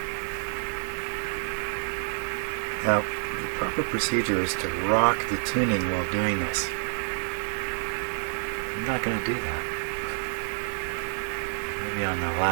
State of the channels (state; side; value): silent; left; digital silence